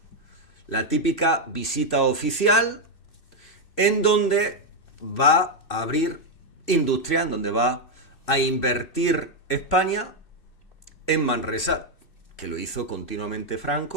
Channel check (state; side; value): late; right; 2.7 ms